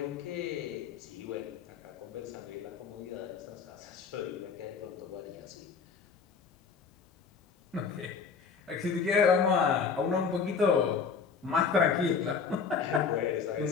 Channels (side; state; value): right; quieter; 5.7 dB